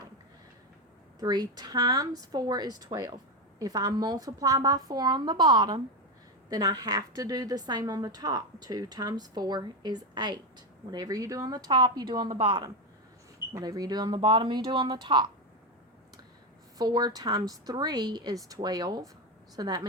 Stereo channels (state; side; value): normal; both; correlation 0.11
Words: 3 times 4 is 12. If I multiply by 4 on the bottom, then I have to do the same on the top. 2 times 4 is 8. Whatever you do on the top, you do on the bottom. Whatever you do on the bottom, you do on the top. 4 times 3 is 12. So that